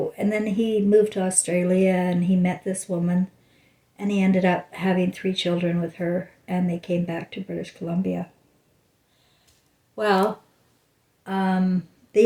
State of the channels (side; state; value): both; identical; correlation 1.00